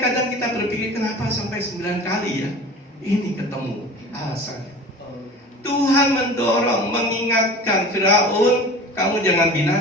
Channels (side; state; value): both; normal; correlation 0.38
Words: kadang kita berpikir, kenapa sampai 9 kali ya? Ini ketemu alasannya. Tuhan mendorong, mengingatkan Firaun, kamu jangan